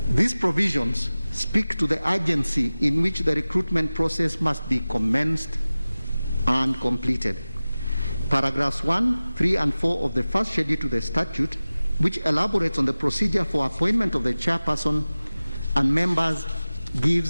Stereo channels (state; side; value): inverted; both; correlation -0.97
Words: These provisions speak to the urgency in which the recruitment process must be commenced and completed. Paragraphs 1, 3, and 4 of the first schedule to the statute, which elaborates on the procedure for appointment of the chairperson and members,